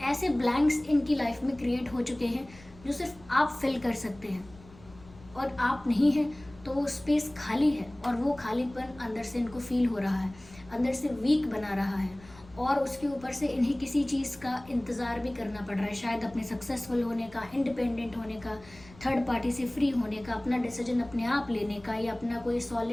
ऐसे ब्लैंक्स इनकी लाइफ में क्रिएट हो चुके हैं जो सिर्फ आप फिल कर सकते हैं, और आप नहीं हैं तो वो स्पेस खाली है, और वो खालीपन अंदर से इनको फील हो रहा है, अंदर से वीक बना रहा है, और उसके ऊपर से इन्हें किसी चीज़ का इंतज़ार भी करना पड़ रहा है, शायद अपने सक्सेसफुल होने का, इंडिपेंडेंट होने का, थर्ड पार्टी से फ्री होने का, अपना डिसीजन अपने आप लेने का, या अपना कोई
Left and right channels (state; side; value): noise; left; rumble, 22 dB below the sound